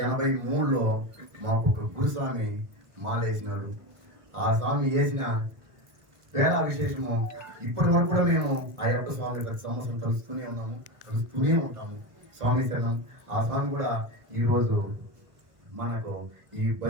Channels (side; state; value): left; late; 1.3 ms